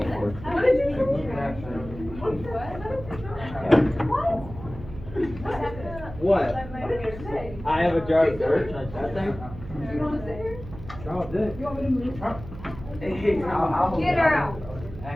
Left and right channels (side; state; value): right; noise; hum, 13 dB below the sound